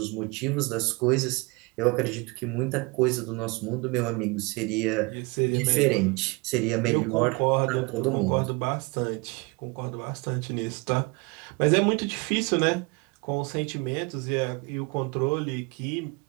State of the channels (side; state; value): left; quieter; 27.7 dB